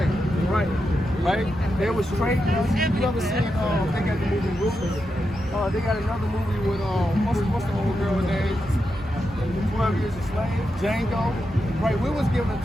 They was trained. You ever seen? They got the movie Ruthless. They got another movie with what's the old girl name? 12 Years a Slave. Django. Right. We was given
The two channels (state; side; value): normal; both; correlation 0.87